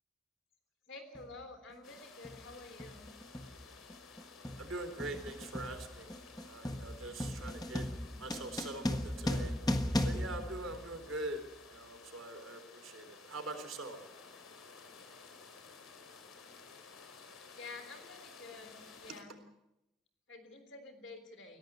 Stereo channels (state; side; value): normal; both; correlation 0.72